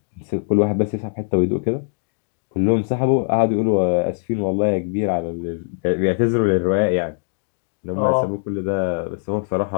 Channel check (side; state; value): right; silent; digital silence